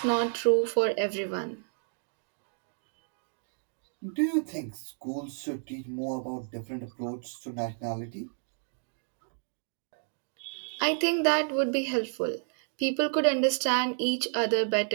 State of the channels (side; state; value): left; silent; digital silence